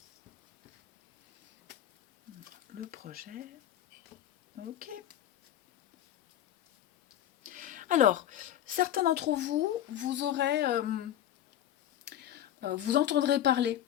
le projet. Ok. Alors, certains d'entre vous, vous entendrez parler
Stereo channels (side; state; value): right; quieter; 11.5 dB